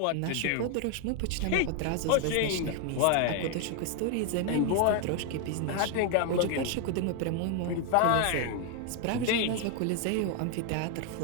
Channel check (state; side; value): different; both; correlation 0.01